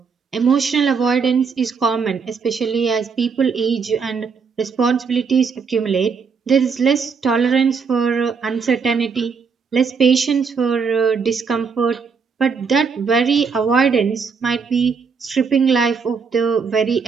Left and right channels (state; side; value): quieter; left; 5.5 dB